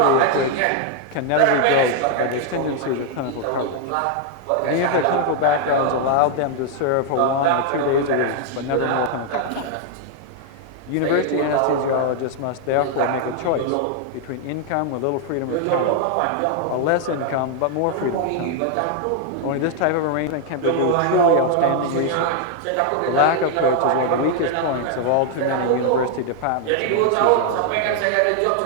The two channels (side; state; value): both; different; correlation 0.00